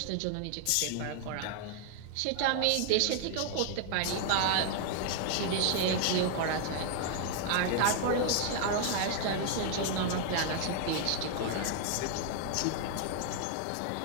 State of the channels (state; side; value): different; both; correlation 0.00